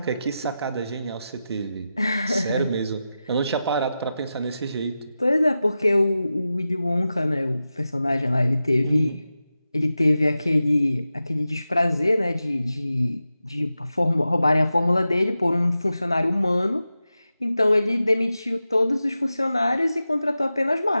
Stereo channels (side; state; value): both; inverted; correlation -0.92